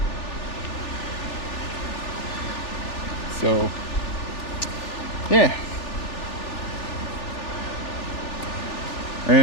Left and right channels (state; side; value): late; right; 3.4 ms